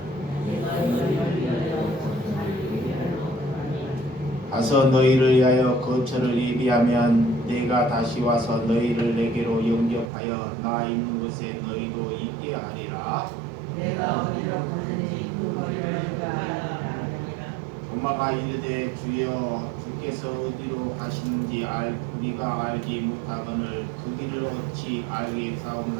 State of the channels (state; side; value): drops out; left; at 10.1 s